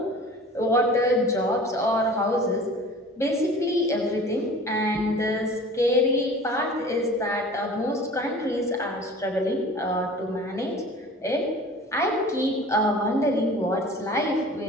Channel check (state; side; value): normal; both; correlation 0.43